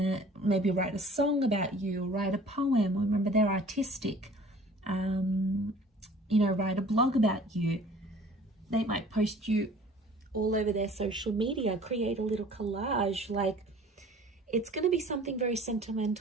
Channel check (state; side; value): normal; both; correlation 0.48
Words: maybe write a song about you, write a poem. Remember, they're artistic. You know, write a blog about you. They might post you all over their social media, create a little collage. Like, it's going to be something very